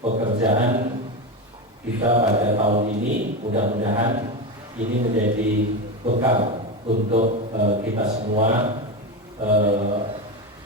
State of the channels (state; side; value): normal; both; correlation 0.17